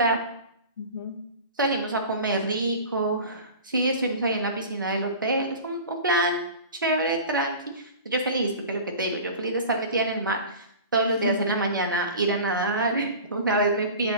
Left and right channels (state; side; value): inverted; both; correlation -0.37